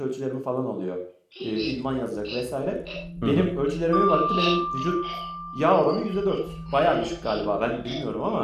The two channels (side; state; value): both; identical; correlation 1.00